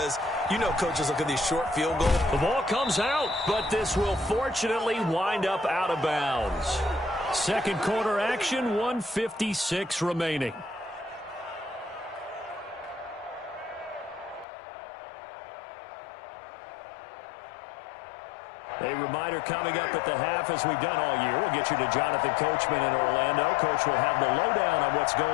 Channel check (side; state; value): right; drops out; at 14.5 s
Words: you know coaches look at these short field goals. The ball comes out, but this will fortunately wind up out of bounds. Second quarter action, 1:56 remaining. A reminder coming up at the half, as we've done all year. We'll get you to Jonathan Coachman in Orlando. Coach will have the lowdown on what's